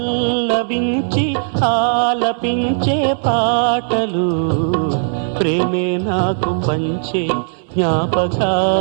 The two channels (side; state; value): left; silent; digital silence